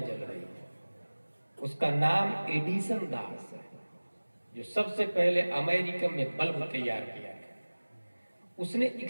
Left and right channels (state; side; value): inverted; both; correlation -1.00